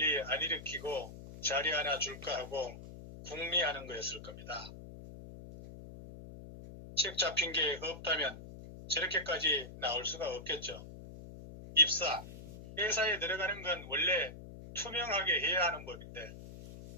안 일으키고 자리 하나 줄까 하고 궁리하는 거였을 겁니다. 책 잡힌 게 없다면 저렇게까지 나올 수가 없겠죠. 입사, 회사에 들어가는 건 원래 투명하게 해야 하는 법인데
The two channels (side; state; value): left; noise; hum, 14 dB below the sound